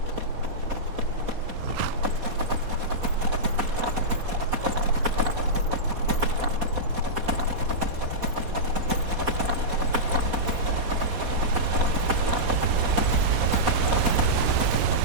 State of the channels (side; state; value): left; late; 4.2 ms